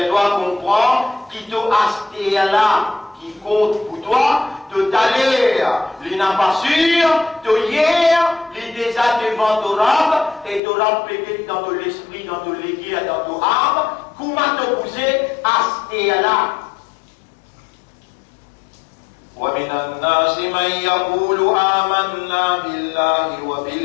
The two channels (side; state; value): right; drops out; at 10.6 s